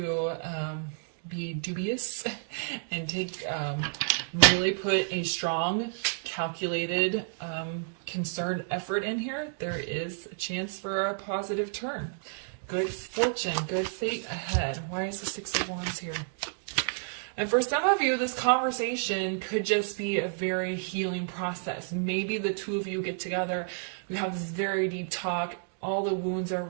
be dubious and take really put a strong, calculated, concerned effort in here, there is a chance for a positive turn. Good fortune, good fate ahead. Why is the 6 of Wands here? And for some of you, this conversation could just be a very healing process. Maybe the two of you get together, we have this very deep talk, all the wounds are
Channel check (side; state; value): left; silent; digital silence